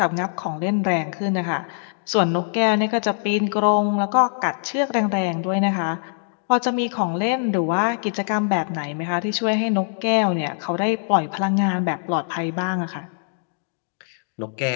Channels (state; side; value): silent; right; digital silence